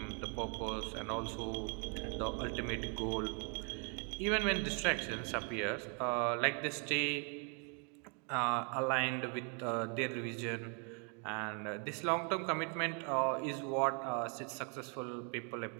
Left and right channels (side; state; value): left; quieter; 38.0 dB